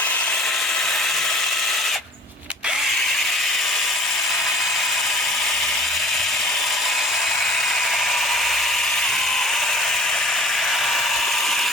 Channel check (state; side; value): normal; both; correlation 0.49